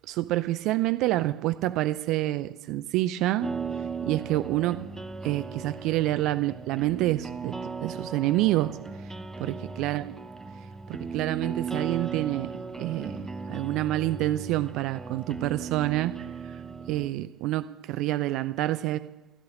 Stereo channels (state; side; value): quieter; left; 13.2 dB